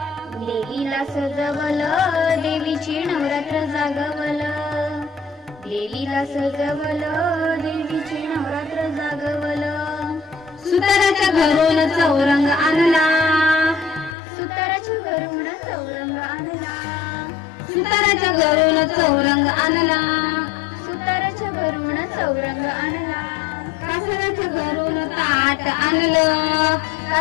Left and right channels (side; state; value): right; drops out; at 14.2 s